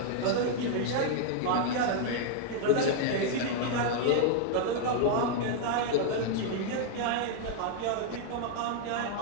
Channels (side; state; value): both; different; correlation 0.00